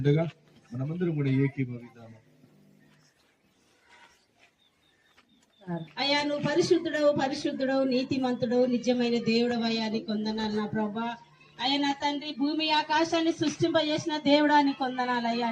మనమందరం కూడా ఏకీభవిద్దాము. అయ్యా, నువ్వు పరిశుద్ధుడవు, పరిశుద్ధుడవు, నీతిమంతుడవు, నిజమైన దేవుడవు అయ్యా, నీకు వందనాలు నా ప్రభా. అయ్యా నా తండ్రి, భూమి ఆకాశాన్ని సృష్టింపజేసిన దేవుడా నీకు వందనాలు అయ్యా,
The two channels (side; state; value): both; identical; correlation 1.00